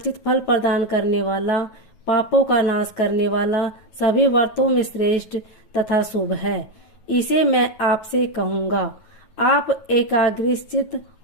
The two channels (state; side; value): late; right; 9.2 ms